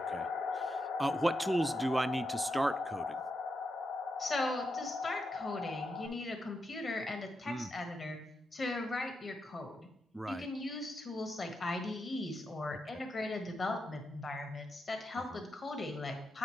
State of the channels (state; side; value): normal; both; correlation 0.85